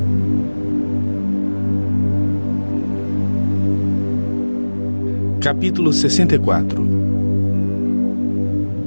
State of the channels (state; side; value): inverted; both; correlation -1.00